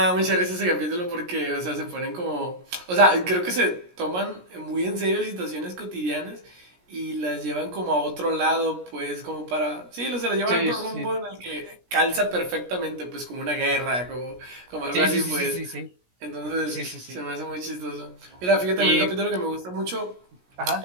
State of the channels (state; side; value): late; left; 17 ms